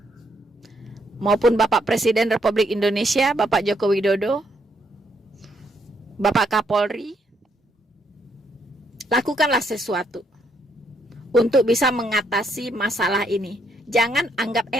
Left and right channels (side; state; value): both; normal; correlation 0.74